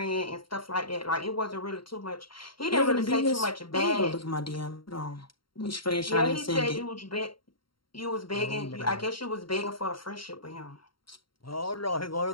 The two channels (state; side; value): late; right; 0.73 ms